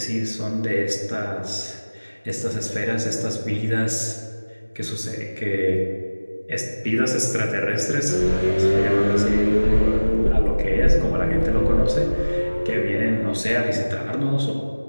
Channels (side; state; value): both; inverted; correlation -1.00